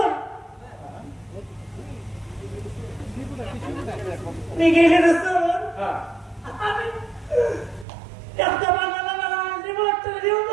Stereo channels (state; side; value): drops out; left; at 7.9 s